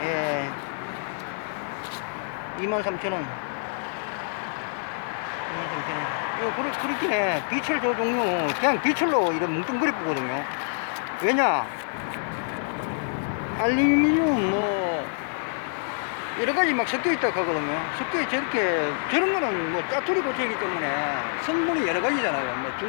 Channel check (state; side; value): silent; right; digital silence